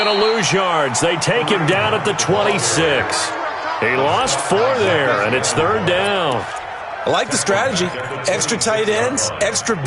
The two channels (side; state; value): both; identical; correlation 1.00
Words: to lose yards. They take him down at the 26. He lost 4 there, and it's 3rd down. I like the strategy. Extra tight ends, extra